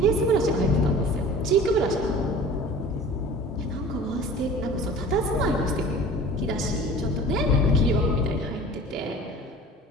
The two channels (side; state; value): both; normal; correlation 0.42